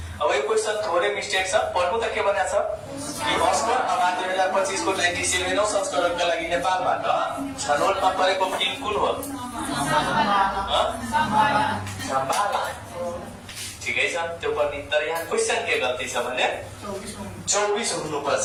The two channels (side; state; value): both; identical; correlation 1.00